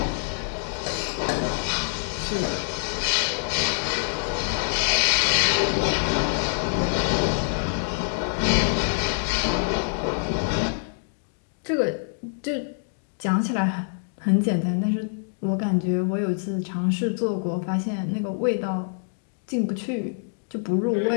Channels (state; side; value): silent; right; digital silence